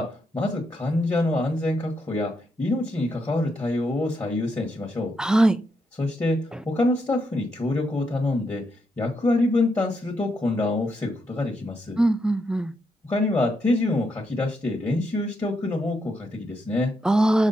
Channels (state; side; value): normal; both; correlation 0.80